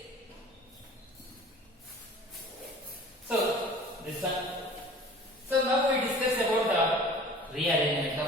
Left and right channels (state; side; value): normal; both; correlation 0.45